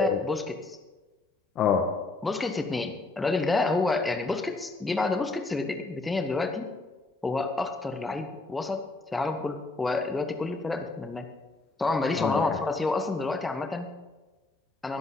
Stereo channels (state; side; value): quieter; right; 3.3 dB